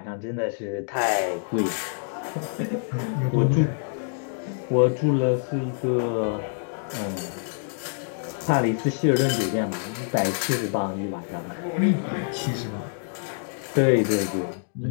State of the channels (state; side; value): silent; right; digital silence